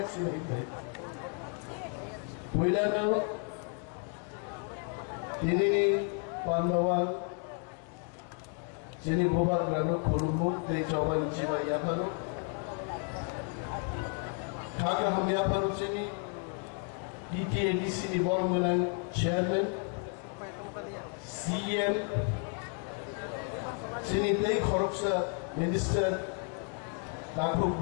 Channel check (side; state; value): right; quieter; 36.3 dB